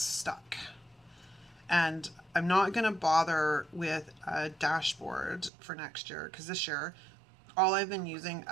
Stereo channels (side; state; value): left; drops out; at 5.5 s